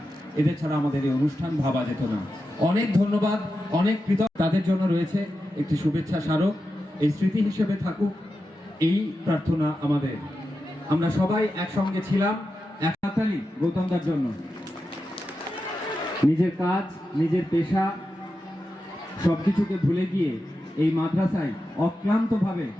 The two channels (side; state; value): both; normal; correlation 0.90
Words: এদের ছাড়া আমাদের এই অনুষ্ঠান ভাবা যেত না। অনেক ধন্যবাদ, অনেক কৃতজ্ঞ। তাদের জন্য রয়েছে একটি শুভেচ্ছা স্মারক, এই স্মৃতি হিসেবে থাকুক এই প্রার্থনা আমাদের। আমরা সবাই একসঙ্গে ছিলাম। এক হাততালি গৌতমদার জন্য। নিজের কাজ, নিজের পেশা সবকিছুকে ভুলে গিয়ে এই মাদ্রাসায় অক্লান্তভাবে